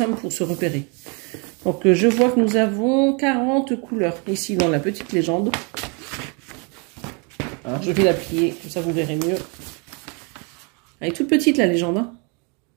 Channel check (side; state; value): left; quieter; 33.8 dB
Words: pour se repérer. Donc je vois que nous avons 40 couleurs ici dans la petite légende. Alors je vais la plier, comme ça vous verrez mieux. Elle est toute petite la légende. Hein.